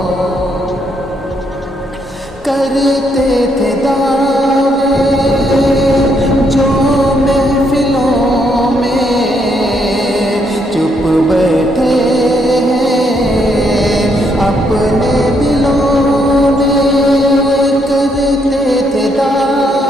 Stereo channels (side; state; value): both; normal; correlation 0.74